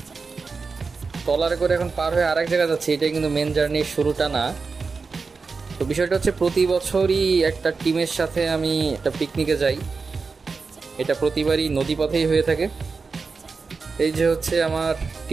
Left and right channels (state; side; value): quieter; left; 4.6 dB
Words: ট্রলারে করে এখন পার হয়ে আরেক জায়গায় যাচ্ছি। এটা কিন্তু মেন জার্নির শুরুটা না। তো বিষয়টা হচ্ছে প্রতি বছরই একটা টিমের সাথে আমি একটা পিকনিকে যাই। এটা প্রতিবারই নদীপথেই হয়ে থাকে। এই যে হচ্ছে আমার